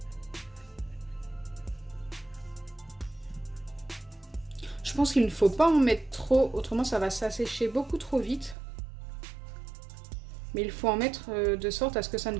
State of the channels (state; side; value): drops out; left; at 8.6 s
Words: Je pense qu'il ne faut pas en mettre trop, autrement ça va s'assécher beaucoup trop vite. Mais il faut en mettre de sorte à ce que ça ne